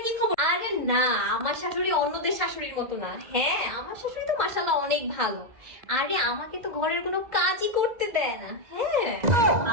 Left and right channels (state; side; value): late; left; 2.1 ms